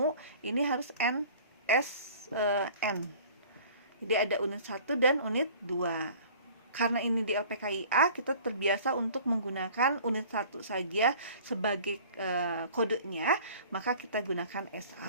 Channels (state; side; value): inverted; both; correlation -0.47